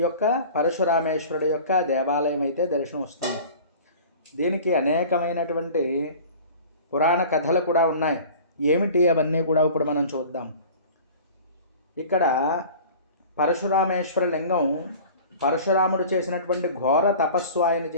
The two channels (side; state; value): both; inverted; correlation -0.42